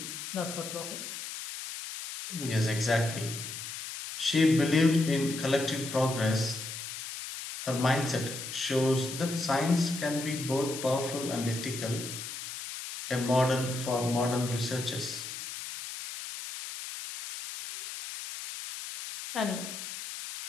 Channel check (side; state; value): left; noise; hiss, 8 dB below the sound